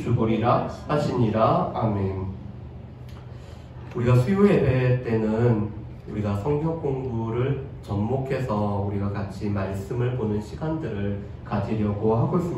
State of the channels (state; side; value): identical; both; correlation 1.00